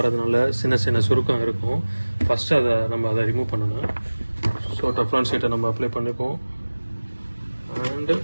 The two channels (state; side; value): inverted; both; correlation -1.00